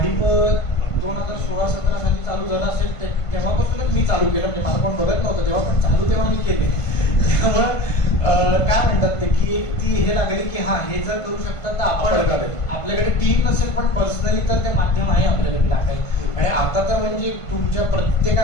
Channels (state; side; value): late; right; 1.5 ms